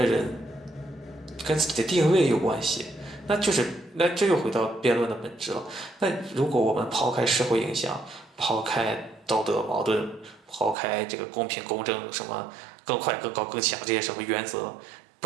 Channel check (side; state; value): left; drops out; at 10.8 s